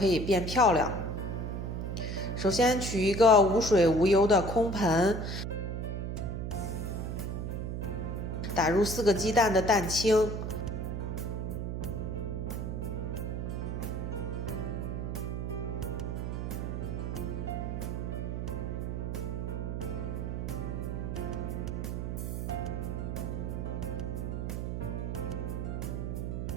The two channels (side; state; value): right; noise; hum, 3 dB below the sound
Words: 以变漂亮。首先取一个无水无油的空盆，打入4个鸡蛋的蛋清，